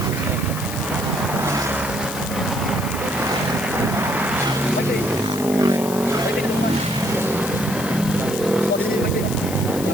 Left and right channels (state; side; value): noise; left; hiss, 10 dB below the sound